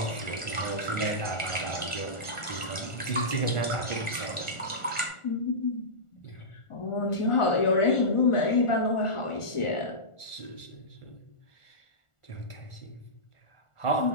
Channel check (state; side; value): late; right; 1.4 ms